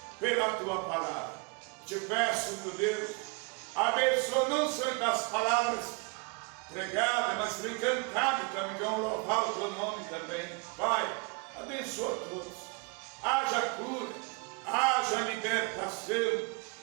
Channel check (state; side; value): quieter; left; 31.3 dB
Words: pela Tua palavra. Te peço, meu Deus, abençoa não só das palavras pregadas, mas também cantadas também, que vão louvar o Teu nome também. Pai, abençoa todos. Haja cura, haja libertação,